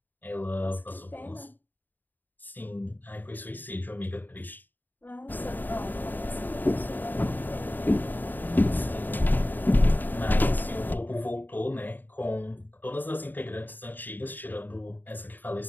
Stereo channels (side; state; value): right; late; 0.089 ms